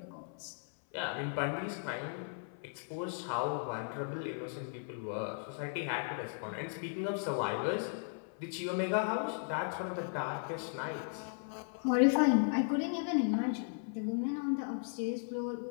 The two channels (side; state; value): right; silent; 54 dB below the other